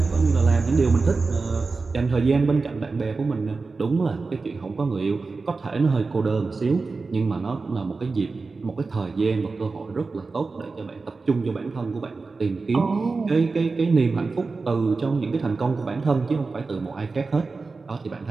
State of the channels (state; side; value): quieter; left; 4.1 dB